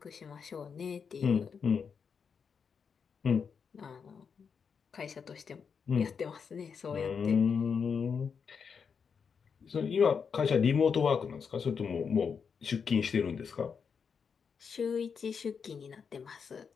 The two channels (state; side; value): quieter; right; 6.2 dB